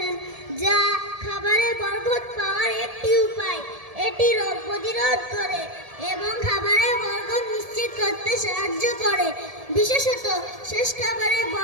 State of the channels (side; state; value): left; late; 1.7 ms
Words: যা খাবারের বরকত পাওয়ার একটি উপায়। এটি রোগ প্রতিরোধ করে এবং খাবারের বরকত নিশ্চিত করতে সাহায্য করে, বিশেষত শেষ খাবারের